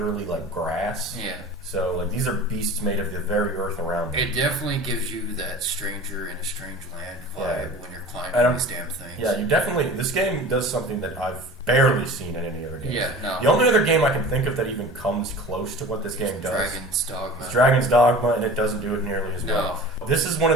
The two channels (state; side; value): normal; both; correlation 0.39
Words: like grass. Yeah. So, like, these are beasts made of the very earth around them. It definitely gives you that stranger in a strange land vibe when you're climbing these damn things. Yeah, this game does something that I've barely seen in any other game. Yeah, no. The only other game I can think of that even comes close to what this game does Dragon's Dogma. It's Dragon's Dogma, and it doesn't do it nearly as well. This is one